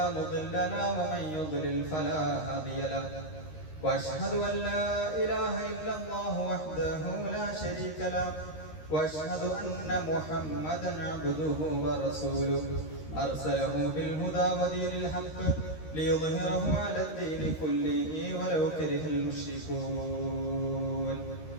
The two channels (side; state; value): right; late; 13 ms